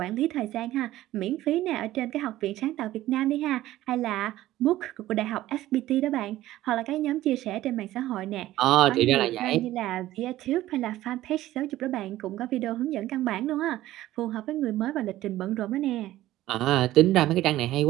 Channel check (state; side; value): quieter; left; 15.1 dB